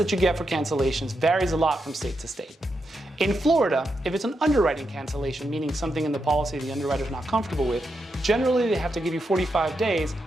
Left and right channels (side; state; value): both; normal; correlation 0.84